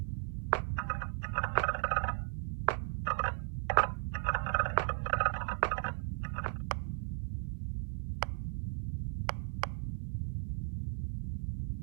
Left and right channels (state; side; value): silent; left; digital silence